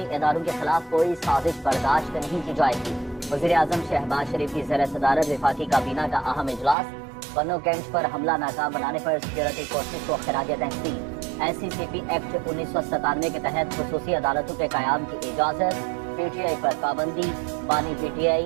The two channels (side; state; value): left; drops out; at 6.8 s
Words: इदारों के खिलाफ कोई साजिश बर्दाश्त नहीं की जाएगी। वज़ीर आज़म शहबाज शरीफ की ज़ेर सदारत वफाकी काबीना का अहम इजलास। पन्नो कैंट पर हमला नाकाम बनाने पर सिक्योरिटी फोर्सेज को खिराज तहसीन। SCCP एक्ट 1997 के तहत खुसूसी अदालतों के क़याम की इजाज़त। पीटीआई पर पाबंदी। बानी